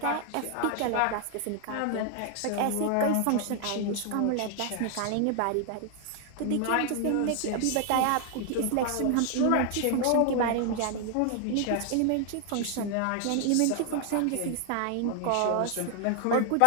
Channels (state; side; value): different; both; correlation 0.00